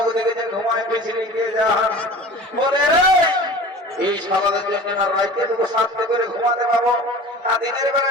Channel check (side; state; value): both; normal; correlation 0.39